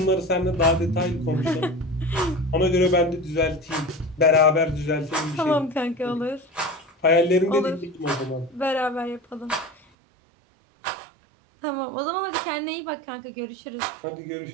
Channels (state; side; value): drops out; left; at 9.8 s